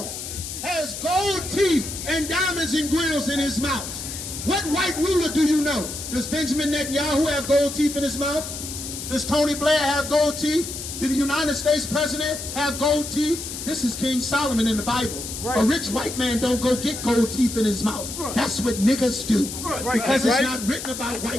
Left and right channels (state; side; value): noise; left; hiss, 8 dB below the sound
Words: has gold teeth and diamonds and grills in his mouth? What white ruler do you know? Does Benjamin Netanyahu have gold teeth in his mouth? Does Tony Blair have gold teeth? Did the United States president have gold teeth? This is King Solomon in the Bible. Right. A rich white man don't go get gold teeth in his mouth. That's what niggas do. Because it's not written about